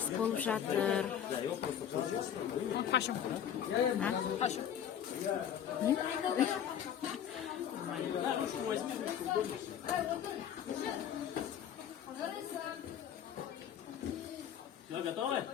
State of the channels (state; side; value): quieter; right; 9.4 dB